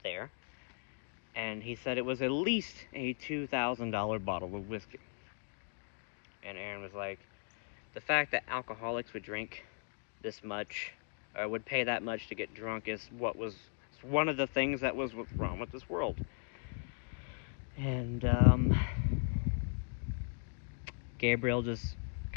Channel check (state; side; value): silent; right; 53 dB below the other